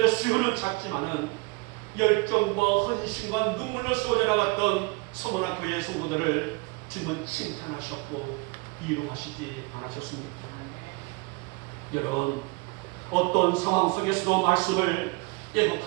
수요는 작지만은 열정과 헌신과 눈물로 쏟아 나갔던 서머나 교회의 성도들을 주님은 칭찬하셨고 위로하시지 않으셨습니까? 여러분, 어떤 상황 속에서도 말씀을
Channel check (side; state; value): left; quieter; 27.0 dB